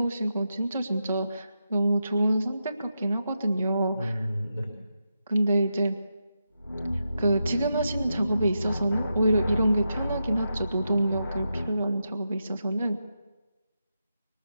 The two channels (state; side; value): inverted; both; correlation -0.86